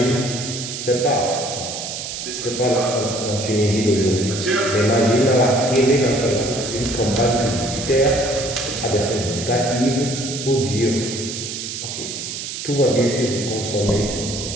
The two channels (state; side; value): noise; right; hiss, 6 dB below the sound